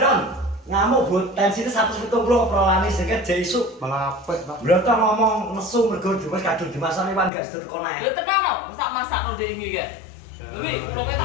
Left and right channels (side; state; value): right; drops out; at 7.3 s